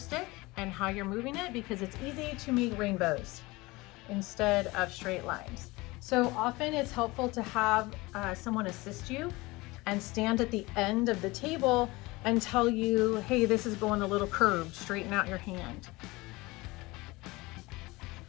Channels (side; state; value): right; quieter; 22.2 dB